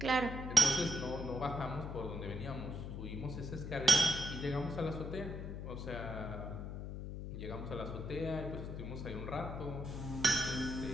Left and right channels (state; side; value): noise; left; hum, 6 dB below the sound